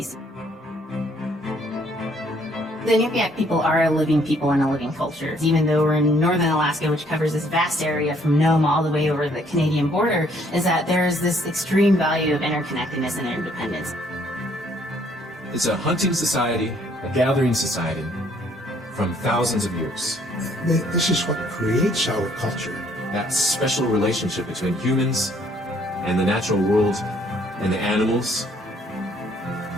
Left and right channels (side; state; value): both; normal; correlation 0.64